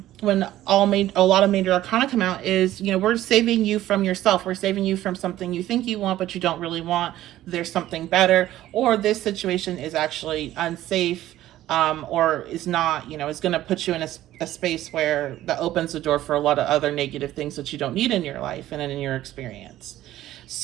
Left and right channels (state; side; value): quieter; left; 14.1 dB